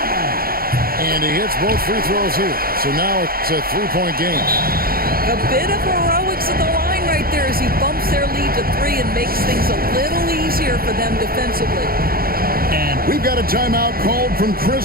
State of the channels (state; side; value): late; left; 0.43 ms